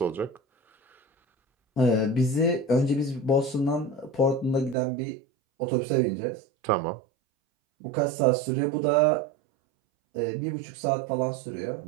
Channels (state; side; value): drops out; left; at 4.8 s